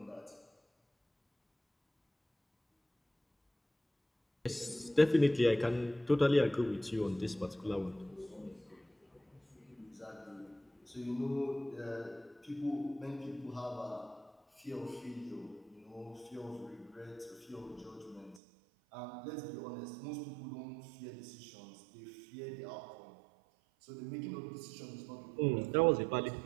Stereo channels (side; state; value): left; drops out; at 18.4 s